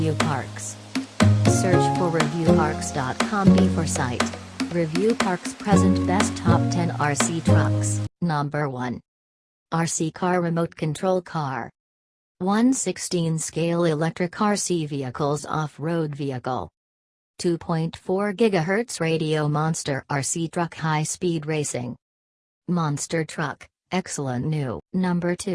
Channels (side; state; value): both; identical; correlation 1.00